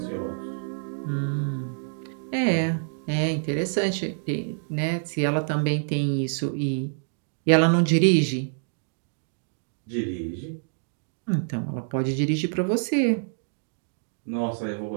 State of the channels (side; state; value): left; silent; digital silence